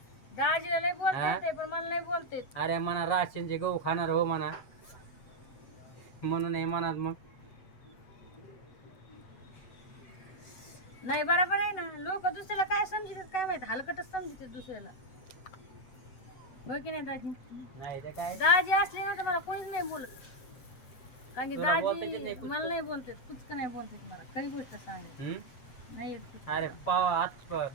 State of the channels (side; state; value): right; late; 7.9 ms